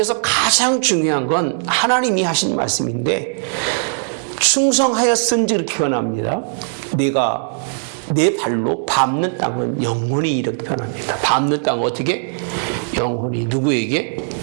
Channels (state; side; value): silent; left; 62 dB below the other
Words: 가장 중요한 건 하나님이 하신 말씀인데, 충성하였은지 이렇게 표현합니다. 내가 내 발로 밟는 땅은 영원히 이렇게 표현합니다. 밟는 땅은 어떻게? 영원히. 누구에게?